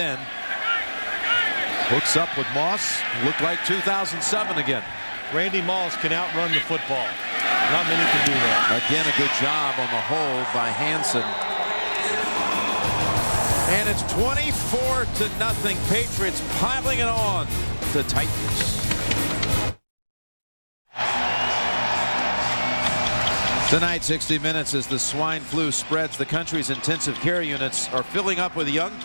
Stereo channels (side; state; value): both; inverted; correlation -1.00